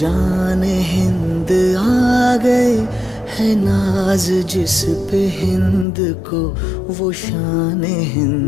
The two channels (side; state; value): right; drops out; at 5.9 s